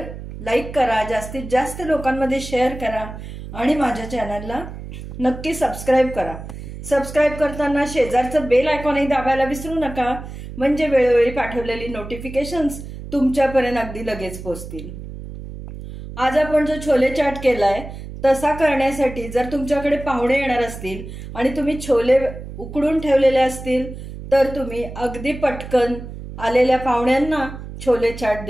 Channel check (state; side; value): noise; right; hum, 11 dB below the sound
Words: लाईक करा, जास्तीत जास्त लोकांमध्ये शेअर करा आणि माझ्या चॅनलला नक्की सबस्क्राईब करा. सबस्क्राईब करताना शेजारचं बेल आयकॉनही दाबायला विसरू नका, म्हणजे वेळोवेळी पाठवलेली नोटिफिकेशन्स तुमच्यापर्यंत अगदी लगेच पोहोचतील. आज आपण जो छोले चाट केलाय तसा करण्यासाठी जर तुमच्याकडे पाहुणे येणार असतील आणि तुम्ही छोले उकडून ठेवलेले असतील तर तुम्ही अगदी पटकन आलेल्या पाहुण्यांना छोले चाट